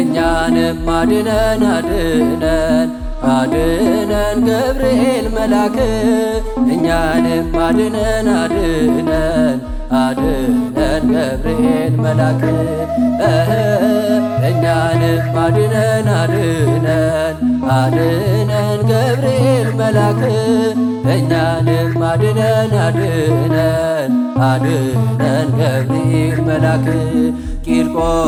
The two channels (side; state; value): both; identical; correlation 1.00